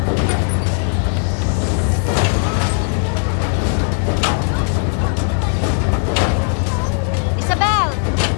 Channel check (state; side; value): silent; right; 56 dB below the other